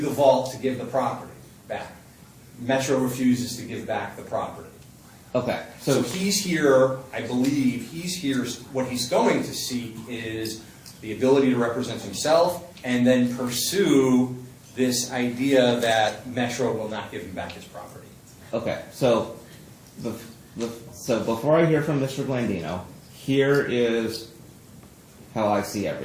vault to give the property back. Metro refuses to give back the property. okay, So he's here, I believe, what he's going to seek is the ability to represent himself and then pursue this idea that Metro will not give him back his property. okay. So so before I hear from Mr. Blandino, here is how I see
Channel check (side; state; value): both; identical; correlation 1.00